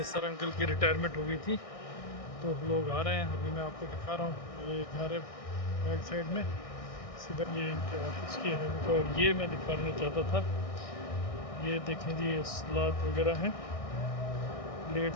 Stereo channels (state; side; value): late; right; 1.6 ms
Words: अंकल की रिटायरमेंट हो गई थी तो लोग आ रहे हैं। अभी मैं आपको दिखा रहा हूँ, ये घर है बैक साइड में, सीधा ये इनके ऑफिस की है। और ये मैं दिखाना चाहता था, ये देखें जी ये सलाद वगैरह हैं,